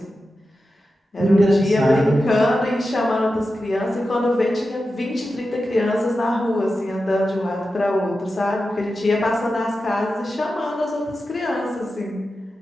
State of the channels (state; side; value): normal; both; correlation 0.91